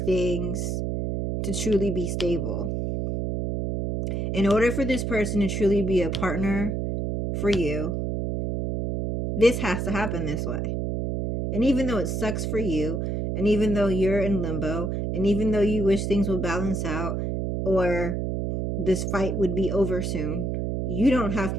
to truly be stable. In order for this person to truly be a partner for you, this has to happen this way. And even though it sucks for you, and even though you're in limbo, and even though you wish things would balance out, or this fight would be over soon, you don't have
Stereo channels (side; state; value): right; noise; hum, 1 dB below the sound